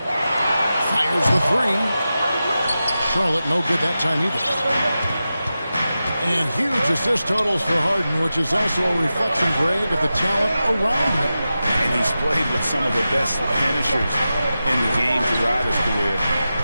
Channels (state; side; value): inverted; both; correlation -0.93